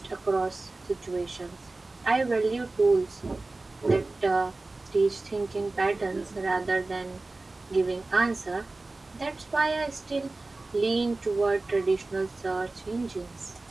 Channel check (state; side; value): quieter; left; 3.2 dB